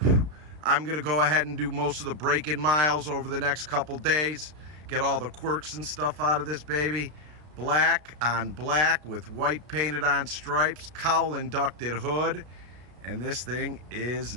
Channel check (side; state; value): left; late; 33 ms